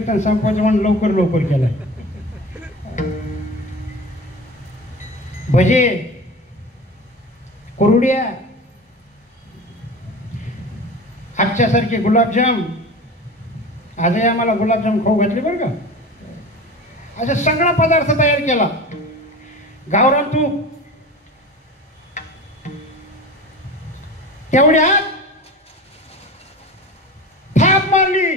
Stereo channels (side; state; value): both; normal; correlation 0.33